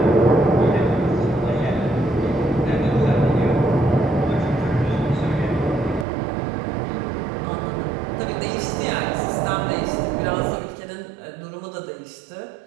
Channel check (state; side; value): drops out; left; at 6.1 s